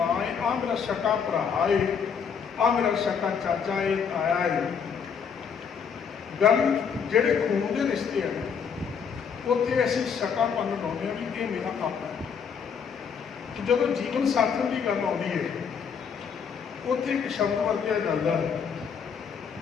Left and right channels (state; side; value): quieter; right; 6.7 dB